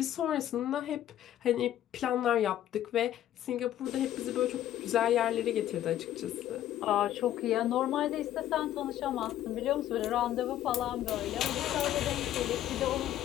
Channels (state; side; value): quieter; right; 12.2 dB